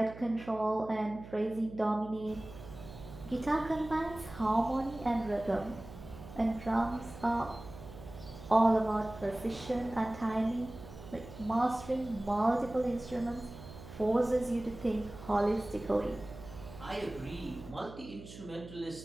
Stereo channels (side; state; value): right; noise; hum, 15 dB below the sound